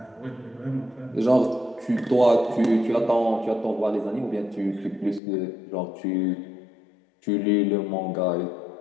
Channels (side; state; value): right; drops out; at 5.2 s